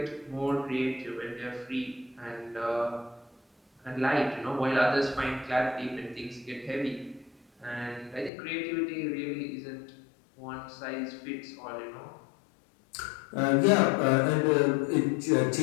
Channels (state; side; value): drops out; right; at 8.3 s